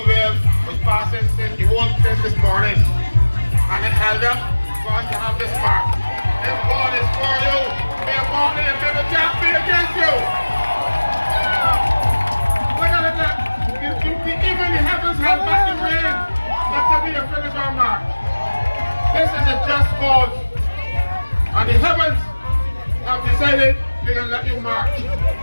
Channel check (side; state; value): both; inverted; correlation -1.00